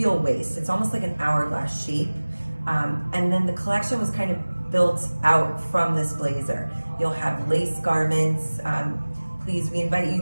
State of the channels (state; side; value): inverted; both; correlation -1.00